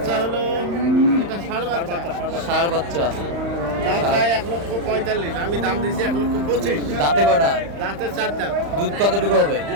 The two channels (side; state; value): left; late; 35 ms